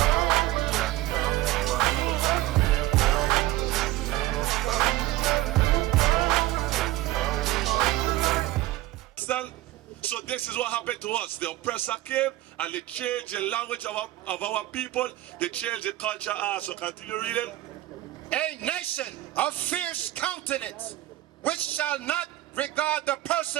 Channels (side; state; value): left; quieter; 16.3 dB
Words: So this is what happened to us. The oppressor came and they changed the language of our people. They changed the culture. So continue reading. A nation of fierce countenance, which shall not regard the